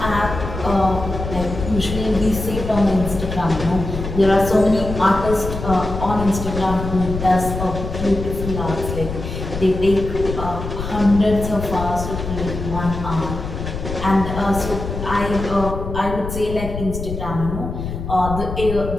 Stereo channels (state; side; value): noise; left; rumble, 6 dB below the sound